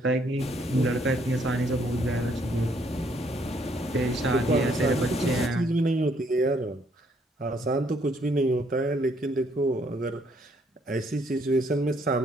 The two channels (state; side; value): normal; both; correlation 0.68